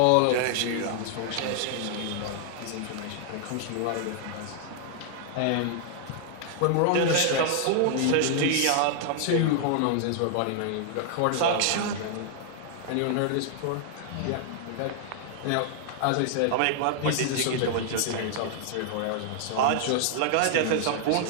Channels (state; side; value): different; both; correlation -0.01